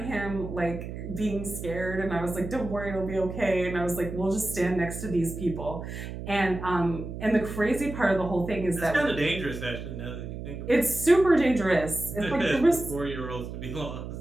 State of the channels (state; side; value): noise; right; hum, 8 dB below the sound